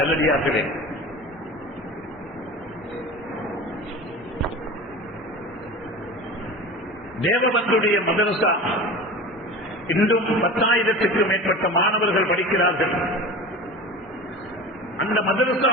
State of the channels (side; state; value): both; normal; correlation 0.32